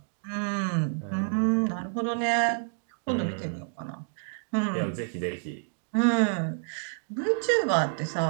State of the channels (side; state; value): left; silent; digital silence